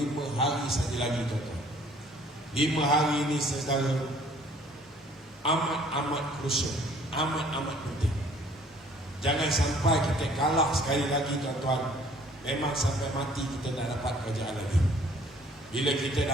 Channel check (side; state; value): both; normal; correlation 0.57